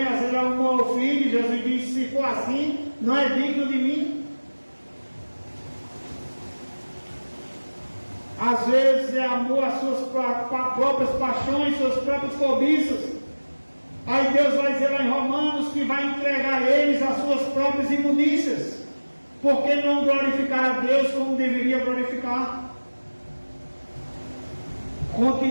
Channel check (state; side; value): inverted; both; correlation -1.00